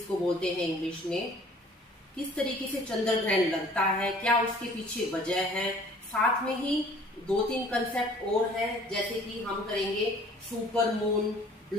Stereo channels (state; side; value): normal; both; correlation 0.53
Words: बोलते हैं इंग्लिश में। किस तरीके से चंद्र ग्रहण लगता है, क्या उसके पीछे वजह है, साथ में ही 2-3 कंसेप्ट और है, जैसे कि हम करेंगे सुपर मून,